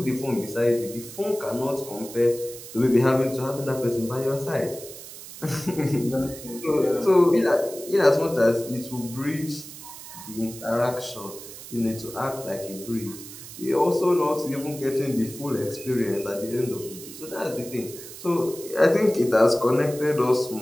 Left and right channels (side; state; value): right; noise; hiss, 14 dB below the sound